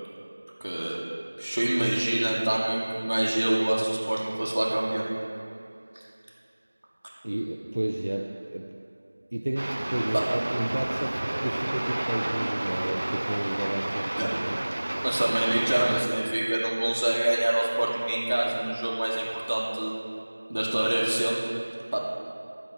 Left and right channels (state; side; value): inverted; both; correlation -1.00